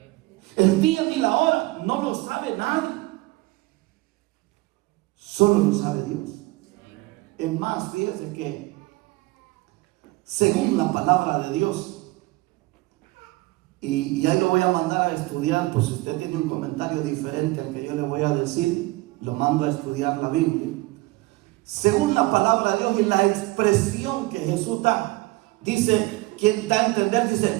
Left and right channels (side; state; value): left; quieter; 21.4 dB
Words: El día ni la hora no lo sabe nadie. Solo lo sabe Dios. Es más, fíjese que según la palabra de Dios, y ahí lo voy a mandar a estudiar, pues si usted tiene un comentario diferente al que yo le voy a decir, lo mando a estudiar la Biblia. Según la palabra de Dios y la expresión que Jesús da, dice, quien da a entender, dice: